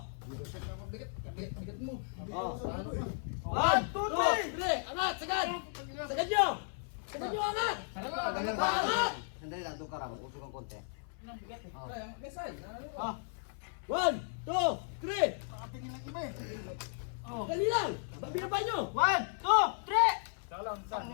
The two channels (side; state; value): right; silent; 54 dB below the other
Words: Bigat mo. Oh! Ano pa? 1, 2, 3! Angat! Sagad! Sagad nyo! Sagad nyo angat! Angat! Sandali lang, doon ka raw. Usok ang konti. Kaya, mesay. Ah! 1, 2, 3! Nakatingin lang iba eh. Dali lang! Babinapan nyo! 1, 2, 3! Saka lang, saan?